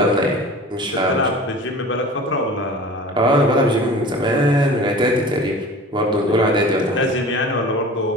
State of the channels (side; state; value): both; normal; correlation 0.40